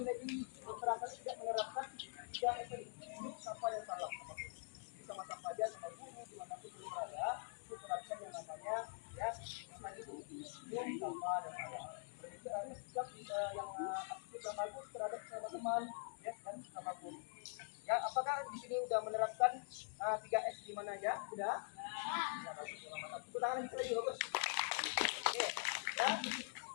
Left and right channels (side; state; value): right; silent; digital silence